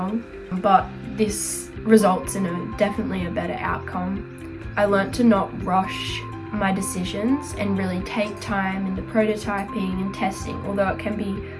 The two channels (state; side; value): identical; both; correlation 1.00